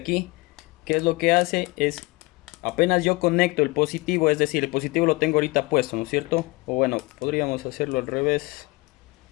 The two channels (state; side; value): quieter; right; 24.5 dB